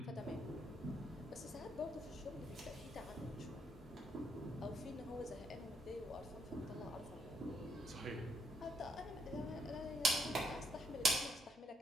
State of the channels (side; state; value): both; normal; correlation 0.74